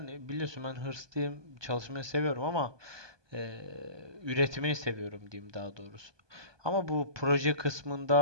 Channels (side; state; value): left; late; 1.2 ms